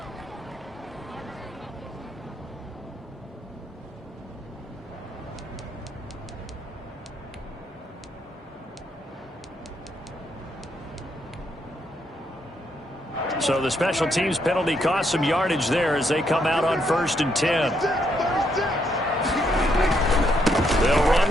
So the special teams penalty cost some yardage there as they come out on 1st and 10. They'll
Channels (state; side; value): normal; both; correlation 0.75